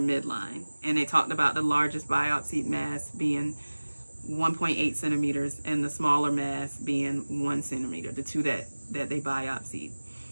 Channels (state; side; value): inverted; both; correlation -1.00